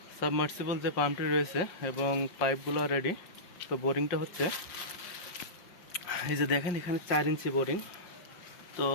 সাবমার্সিবল যে পাম্পটি রয়েছে এবং পাইপগুলো রেডি। তো বোরিংটা হচ্ছে, এই যে দেখেন এখানে 4 ইঞ্চি বোরিং। তো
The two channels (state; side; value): late; right; 5.6 ms